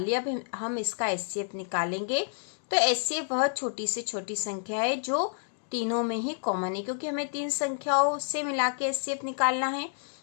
लिया। अब हम इसका HCF निकालेंगे। तो HCF वह छोटी से छोटी संख्या है जो तीनों में ही कॉमन है, क्योंकि हमें 3 संख्याओं से मिला के HCF निकालना है।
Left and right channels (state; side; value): silent; right; digital silence